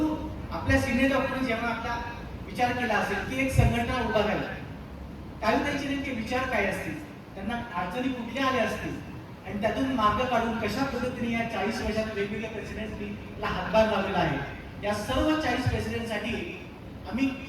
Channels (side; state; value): both; identical; correlation 1.00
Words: आपल्या सिनियर डॉक्टरने जेव्हा आपला विचार केला असेल की एक संघटना उभा झाली, काही त्यांचे नेमके विचार काय असतील, त्यांना अडचणी कुठल्या आल्या असतील आणि त्यातून मार्ग काढून कशा पद्धतीने या 40 वर्षात वेगवेगळ्या प्रेसिडेंटला हातभार लावलेला आहे, या सर्व 40 प्रेसिडेंटसाठी आम्ही